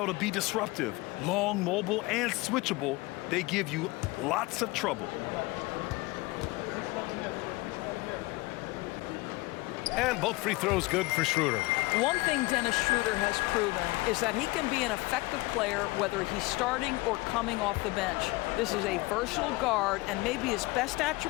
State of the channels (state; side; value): quieter; right; 22.4 dB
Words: to be disruptive. Long, mobile, and switchable. They give you lots of trouble. And both free throws good for Schroeder. One thing Dennis Schroeder has proven is that he can be an effective player whether he's starting or coming off the bench. This is a versatile guard, and maybe his best